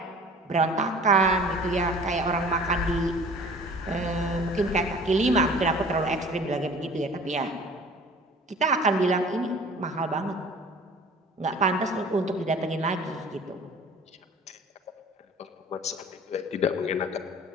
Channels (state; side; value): normal; both; correlation 0.46